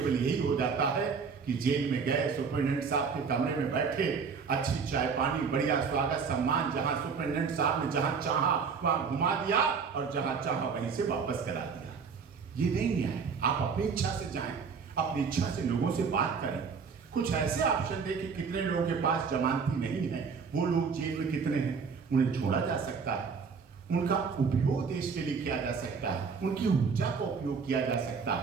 यही हो जाता है कि जेल में गए, सुपरिटेंडेंट साहब के कमरे में बैठे, अच्छी चाय पानी, बढ़िया स्वागत सम्मान, जहां सुपरिटेंडेंट साहब ने जहां चाहा वहां घुमा दिया और जहां चाहा वहीं से वापस करा दिया। ये नहीं न्याय। आप अपनी इच्छा से जाएं, अपनी इच्छा से लोगों से बात करें। कुछ ऐसे ऑप्शन दें कि कितने लोगों के पास जमानती नहीं है, वो लोग जेल में कितने हैं, उन्हें छोड़ा जा सकता है, उनका उपयोग देश के लिए किया जा सकता है, उनकी ऊर्जा का उपयोग किया जा सकता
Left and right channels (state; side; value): quieter; left; 5.6 dB